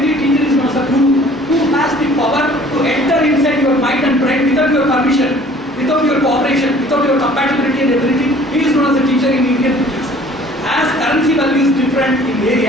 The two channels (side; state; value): both; normal; correlation 0.52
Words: teacher is known as a guru, who has the power to enter inside your mind and brain without your permission, without your cooperation, without your compatibility and ability. He is known as a teacher in Indian context. As currency value is different in